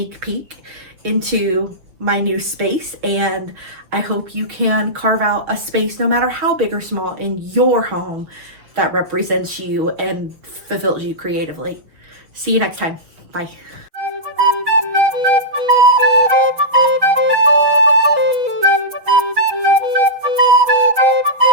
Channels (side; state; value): left; late; 6.3 ms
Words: peek into my new space, and I hope you can carve out a space, no matter how big or small, in your home that represents you and fulfills you creatively. See you next time. Bye.